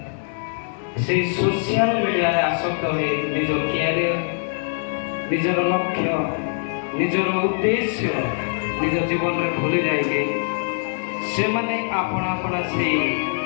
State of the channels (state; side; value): silent; right; 63 dB below the other